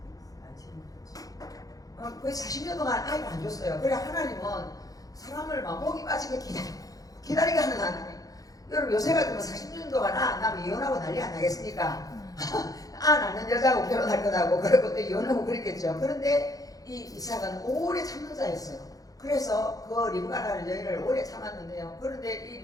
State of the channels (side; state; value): right; late; 0.17 ms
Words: 거의 40년 동안 아이를 안 줬어요. 그래 하나님은 사람을 막 목이 빠지게 기다리게 하는 하나님. 여러분 요새 같으면 40년 동안 안 나면 이혼하고 난리 안 나겠습니까? 안 낳는 여자하고 결혼할 거다고 그러고 또 이혼하고 그랬겠죠. 그런데 이 이삭은 오래 참는 자였어요. 그래서 그 리브가라는 여인을 오래 참았는데요. 그런데 이